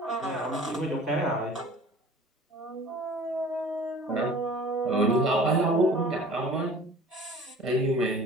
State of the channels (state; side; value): normal; both; correlation 0.46